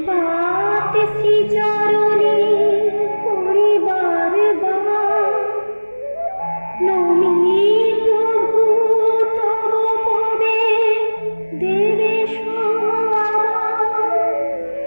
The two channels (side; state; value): both; inverted; correlation -1.00